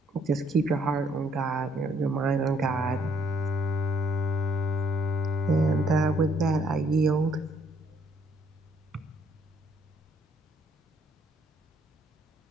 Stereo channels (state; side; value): normal; both; correlation 0.67